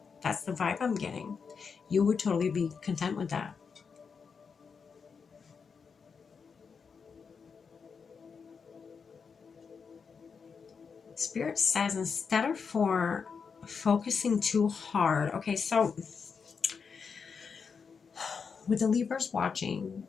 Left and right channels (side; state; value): right; quieter; 5.7 dB